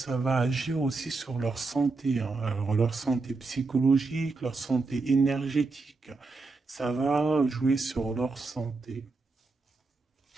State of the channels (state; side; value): quieter; left; 3.8 dB